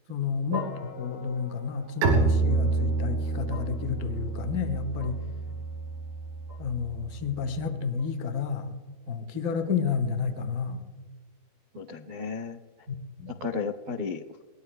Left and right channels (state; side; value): late; left; 12 ms